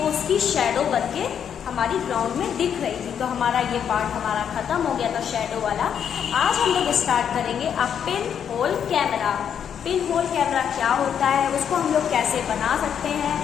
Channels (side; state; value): right; quieter; 8.3 dB